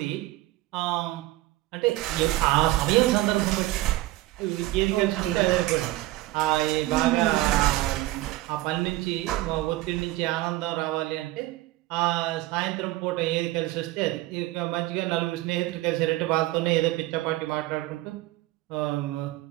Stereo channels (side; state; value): left; quieter; 17.7 dB